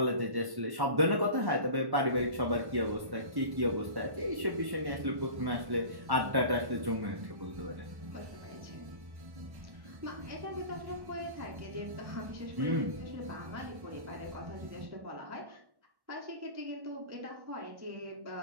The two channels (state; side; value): late; left; 1.1 ms